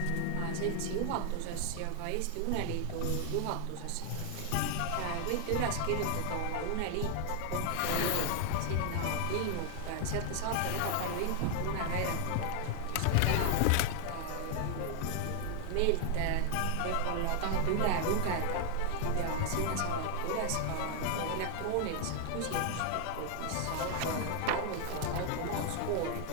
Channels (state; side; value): different; both; correlation 0.00